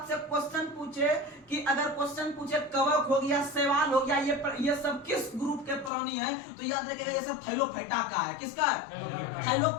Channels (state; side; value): drops out; right; at 5.9 s